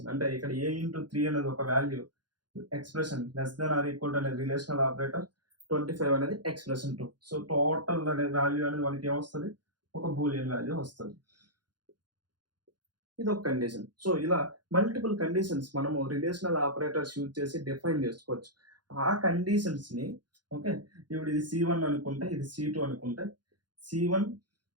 అంటే ఇక్కడ ఏ ఇంటూ 3 అనేది ఒక value expression less than or equal to అనేది రిలేషనల్ ఆపరేటర్ 25 అనేది ఎక్స్‌ప్రెషన్ 2. సో, టోటల్ అనే వాల్యూ అనేది మనకి ఏమొస్తది? ఒక బూలియన్ వాల్యూ వస్తది. ఇదొక కండిషన్. సో, ఇలా మల్టిపుల్ కండిషన్స్ మనము రిలేషనల్ ఆపరేటర్స్ యూజ్ చేసి డిఫైన్ చేసుకోవచ్చు. ఆ కండిషన్స్‌ని ఓకే. ఇప్పుడు ఇది C1 అనుకుంటే, ఇది C2 అనుకుంటే, C1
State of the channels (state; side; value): late; left; 0.70 ms